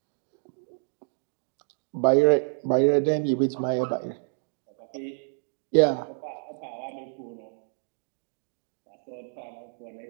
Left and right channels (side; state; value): left; silent; 59 dB below the other